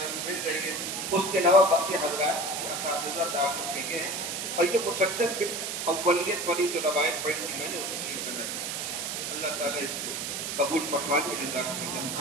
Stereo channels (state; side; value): noise; right; hiss, 3 dB below the sound